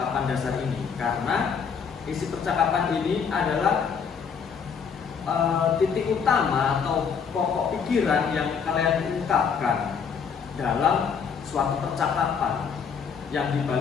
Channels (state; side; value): quieter; right; 6.4 dB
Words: dasar ini, karena isi percakapan ini adalah titik utama atau pokok pikiran yang kalian ungkapkan dalam suatu percakapan yang